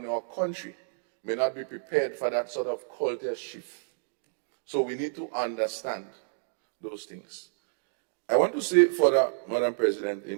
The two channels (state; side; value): silent; left; digital silence